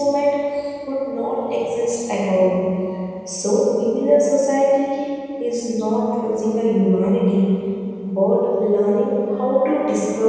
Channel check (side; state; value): both; identical; correlation 1.00